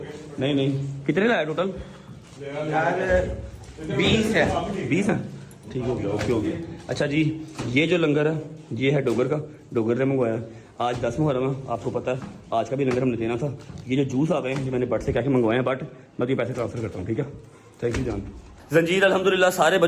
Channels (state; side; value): identical; both; correlation 1.00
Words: नहीं कितने लाया टोटल? 20 है। 20 है, ठीक हो गया, ओके हो गया। अच्छा जी, ये जो लंगर है ये है डोगर का, डोगर ने मंगवाया। आज 10 मुहर्रम है, आपको पता है आज का भी लंगर हमने देना था। ये जो जूस आ गए हैं, ये मैंने बट से क्या मंगवाए हैं, बट मैं तो पैसे ट्रांसफर करता हूँ, ठीक है। थैंक यू जान। जंजीर अल्हम्दुलिल्लाह सारे